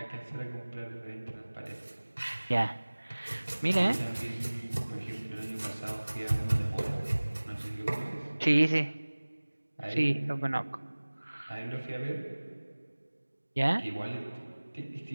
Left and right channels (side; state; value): both; inverted; correlation -1.00